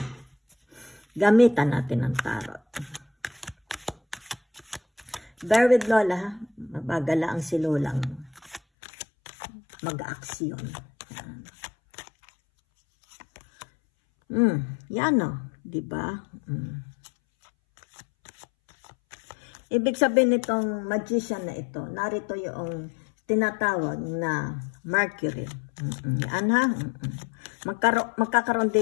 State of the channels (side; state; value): right; drops out; at 8.6 s